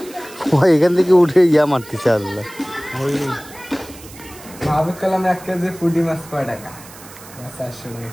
এখান থেকে উঠে ইয়া মারতেছে। আল্লাহ, ভাবে কালাম 1 কেজি পুঁটি মাছ কয় টাকা? 400 টাকা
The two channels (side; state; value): right; noise; hiss, 19 dB below the sound